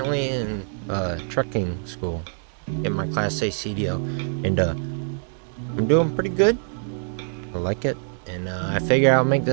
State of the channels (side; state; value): left; silent; 62 dB below the other